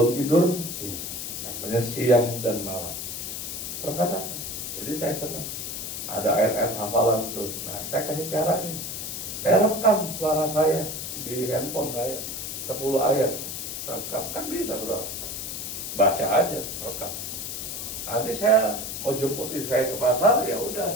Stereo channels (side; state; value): left; noise; hiss, 5 dB below the sound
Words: tidur ini, namanya siang dan malam. Perkataan. Jadi saya senang. Ada ayat-ayat hafalan tuh. Nah, saya kasih cara nih. Saya rekam suara saya di handphone saya 10 ayat. Rekam, kan bisa bro. Baca aja, rekam. Nanti saya mau jemput istri saya ke pasar, ya